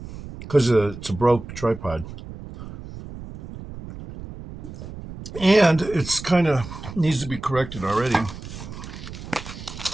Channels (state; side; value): noise; right; rumble, 12 dB below the sound